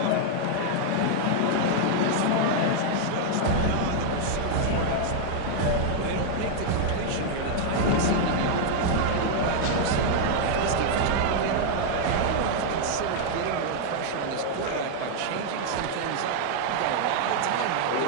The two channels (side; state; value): both; different; correlation 0.00